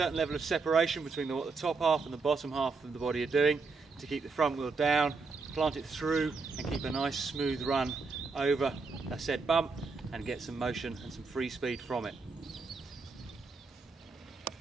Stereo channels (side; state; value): left; quieter; 4.3 dB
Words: level of separation between what the top half and the bottom half of the body are doing to keep the front wheel down, plant it through and keep a nice smooth run over a said bump and get some motion and some free speed from it.